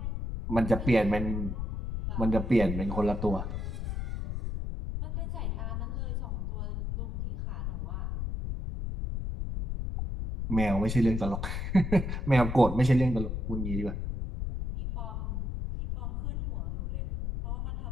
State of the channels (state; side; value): noise; left; rumble, 3 dB below the sound